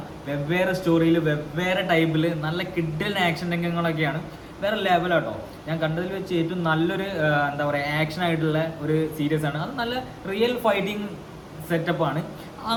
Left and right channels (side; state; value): both; identical; correlation 1.00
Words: വെവ്വേറെ സ്റ്റോറിയിൽ വെവ്വേറെ ടൈപ്പിൽ നല്ല കിഡിലൻ ആക്ഷൻ രംഗങ്ങളൊക്കെയാണ്. വേറെ ലെവലാട്ടോ. ഞാൻ കണ്ടതിൽ വെച്ച് ഏറ്റവും നല്ലൊരു എന്താ പറയുക, ആക്ഷൻ ആയിട്ടുള്ള ഒരു സീരീസാണ്. അത് നല്ല റിയൽ ഫൈറ്റിംഗ് സെറ്റപ്പാണ്.